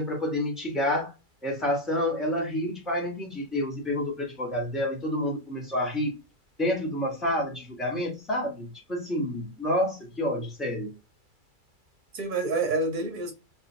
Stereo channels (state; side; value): late; left; 2.3 ms